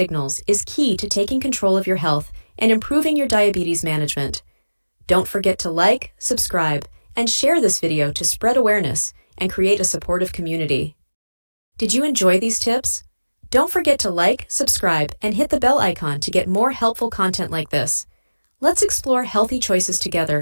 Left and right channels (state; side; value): inverted; both; correlation -1.00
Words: is key to taking control of your health and improving your diabetes management. Don't forget to like, subscribe, and share this video to spread awareness and create a supportive community. Did you enjoy these tips? Don't forget to like, subscribe, and hit the bell icon to get more helpful content like this. Let's explore healthy choices